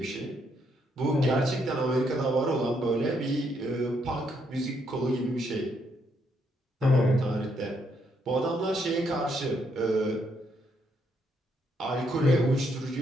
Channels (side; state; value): both; normal; correlation 0.74